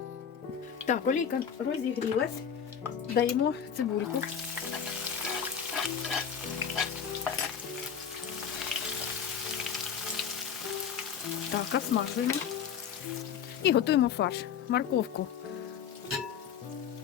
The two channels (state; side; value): quieter; right; 7.7 dB